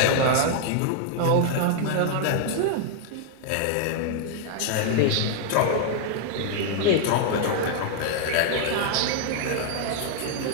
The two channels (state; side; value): different; both; correlation -0.01